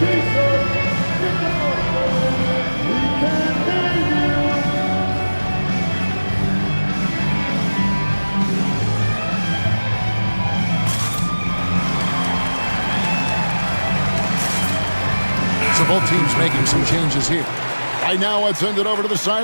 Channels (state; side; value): inverted; both; correlation -1.00